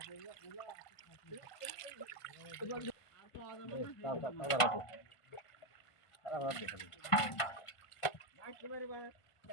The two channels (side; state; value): right; late; 1.5 ms